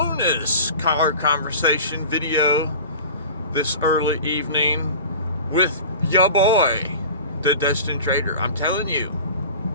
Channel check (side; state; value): both; inverted; correlation -0.37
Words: car conversation video this early evening with ya boy, the Destined Trader. I'm telling you,